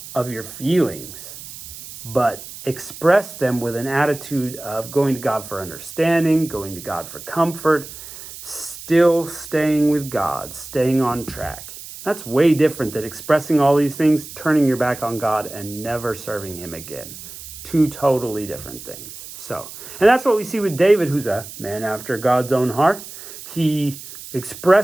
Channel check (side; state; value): right; noise; hiss, 14 dB below the sound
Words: of your feelings, but express them with an attitude of going to God for understanding, going to God for comfort, still staying with God, staying on track. That's way different than expressing all these things, turning your back on God, and never serving him again. Two totally different things. And that's what we see with David, who's a man after God's own heart. He